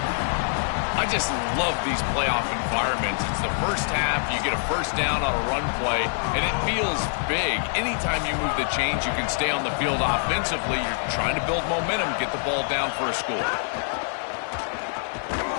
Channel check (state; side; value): silent; right; 62 dB below the other